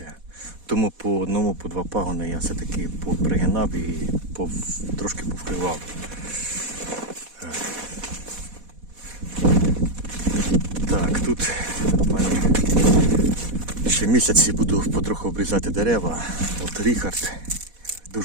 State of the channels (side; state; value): left; late; 4.1 ms